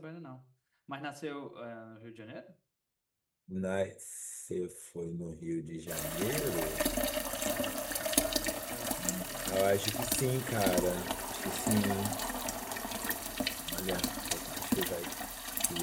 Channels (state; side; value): identical; both; correlation 1.00